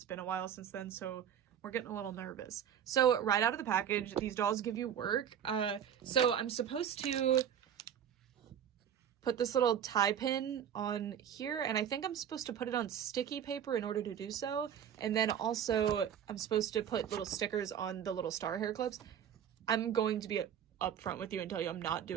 been a while since then, so we're getting a little nervous. So right out of the package, these dolls give you work. So I'm supposed to put this little tie pin on here, and I think I'm supposed to put it on sticky paper in order to do so, and then also I'm supposed to put little stickers on the little star hair clips. I'm going to be upfront with you and tell you I'm not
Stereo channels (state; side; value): quieter; left; 9.1 dB